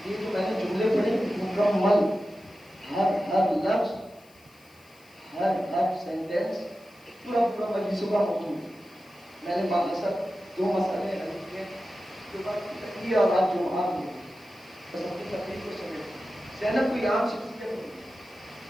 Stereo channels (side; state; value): left; noise; hiss, 29 dB below the sound